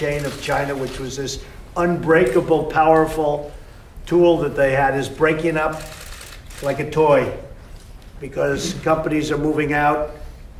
of China, which was this unbreakable, powerful tool that they had, is breaking up like a toy because companies are moving out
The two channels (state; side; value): identical; both; correlation 1.00